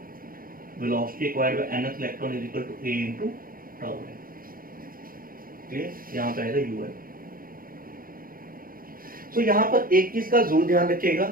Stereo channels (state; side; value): late; left; 0.42 ms